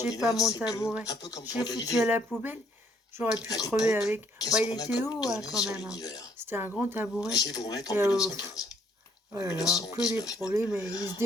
pas extraordinaire, mon c'est que, tabouret. un peu comme J'ai pour foutu à Galilée, la poubelle. J'aurais pu à crever l'époque, avec. qu'est-ce Bah, il qu'on a était comme haut, hein, données quand sur même. Hein. l'univers? C'était un grand tabouret. Je vais vous remettre en Et, 1915. oh là là, que des 1919 même. problèmes. Et il se On ne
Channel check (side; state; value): both; normal; correlation 0.65